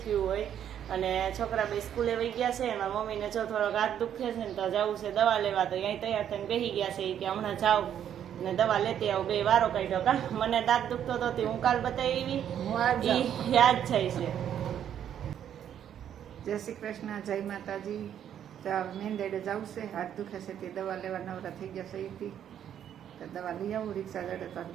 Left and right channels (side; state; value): left; quieter; 9.7 dB